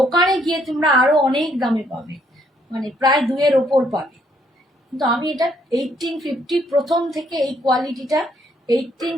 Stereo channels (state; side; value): normal; both; correlation 0.69